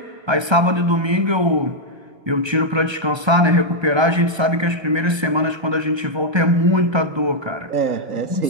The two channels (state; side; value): late; left; 1.3 ms